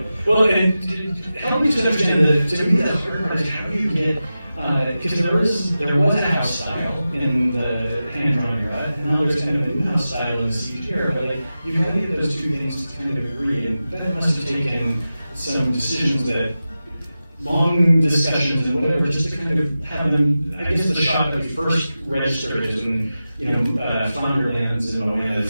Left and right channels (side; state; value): both; inverted; correlation -0.93